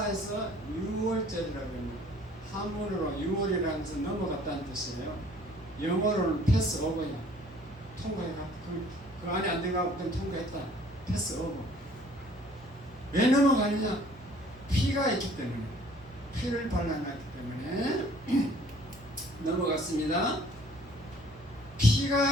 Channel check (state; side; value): normal; both; correlation 0.56